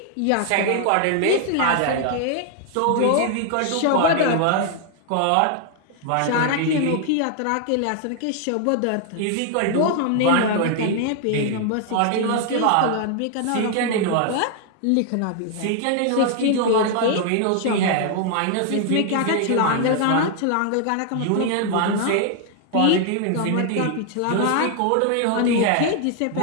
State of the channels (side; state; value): both; different; correlation 0.00